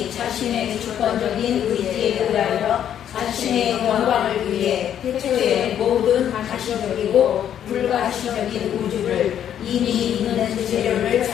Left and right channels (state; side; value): quieter; right; 9.9 dB